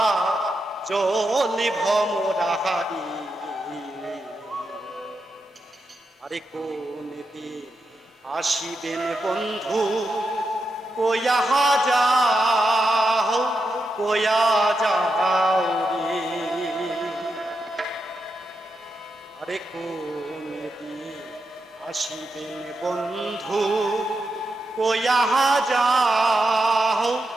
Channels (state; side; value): normal; both; correlation 0.86